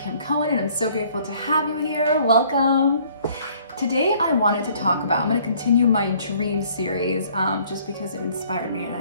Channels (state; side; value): inverted; both; correlation -0.59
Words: Cohen and I'm so grateful to have you here. Welcome. Today I wanted to talk about, I'm going to continue my dream series just because it inspired me and